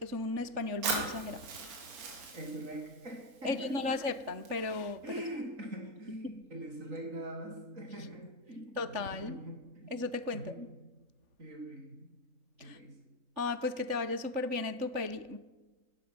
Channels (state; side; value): late; left; 3.8 ms